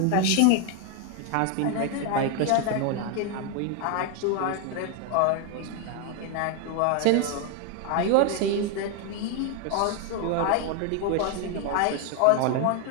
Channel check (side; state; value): both; different; correlation 0.01